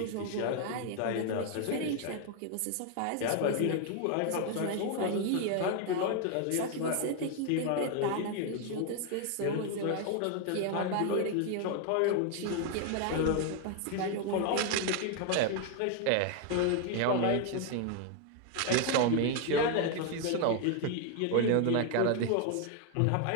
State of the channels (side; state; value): both; different; correlation 0.01